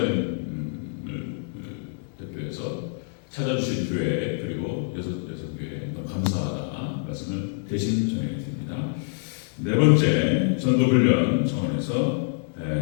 대표해서 찾아주신 교회 그리고 여섯 교회 너무 감사하다 말씀을 대신 전해드립니다. 네 번째 전도훈련 정원에서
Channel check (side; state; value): right; silent; 61 dB below the other